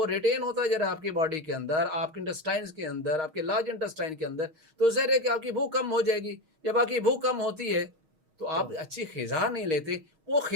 ریٹین ہوتا جا رہا آپ کی باڈی کے اندر، آپ کے انٹسٹائنز کے اندر، آپ کے لارج انٹسٹائن کے اندر، تو ظاہر ہے کہ آپ کی بھوک کم ہو جائے گی۔ جب آپ کی بھوک کم ہوتی ہے تو آپ اچھی غذا نہیں لیتے، وہ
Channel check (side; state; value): left; late; 6.4 ms